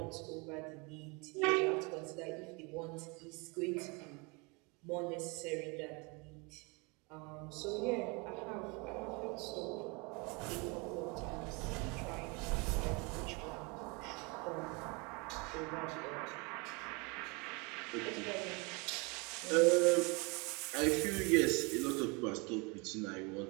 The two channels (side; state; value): left; quieter; 29.2 dB